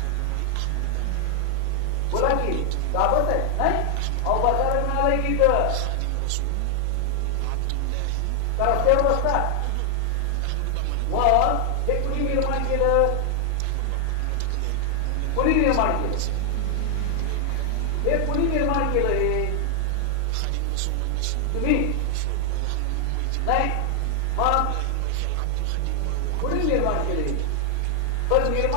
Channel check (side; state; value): both; different; correlation 0.00